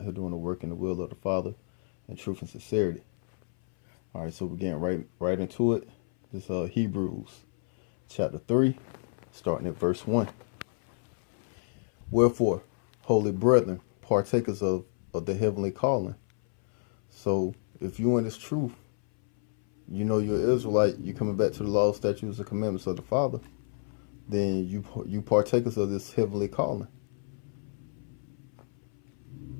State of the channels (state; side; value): silent; right; 58 dB below the other